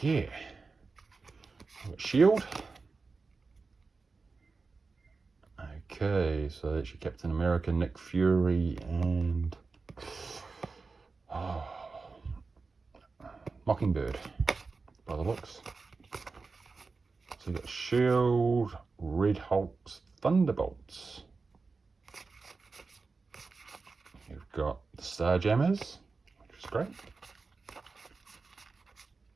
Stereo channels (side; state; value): left; quieter; 4.2 dB